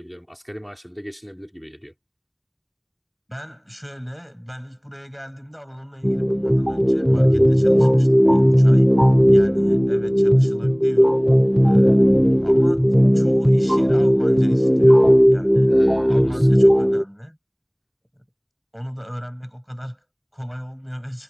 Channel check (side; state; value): both; identical; correlation 1.00